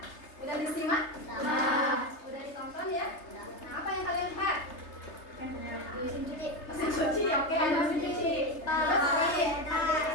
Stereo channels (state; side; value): late; right; 3.3 ms